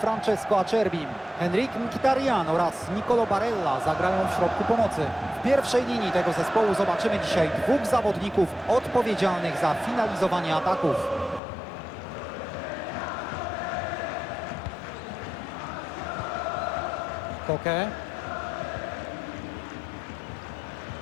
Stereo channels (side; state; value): right; drops out; at 11.4 s